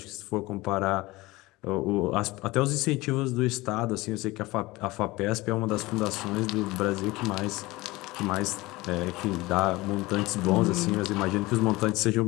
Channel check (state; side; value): quieter; right; 20.8 dB